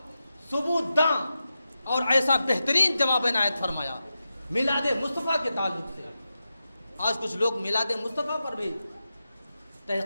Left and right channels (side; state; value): both; inverted; correlation -0.90